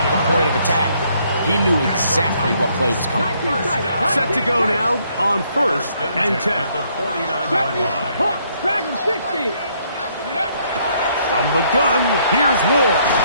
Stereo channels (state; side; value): inverted; both; correlation -0.69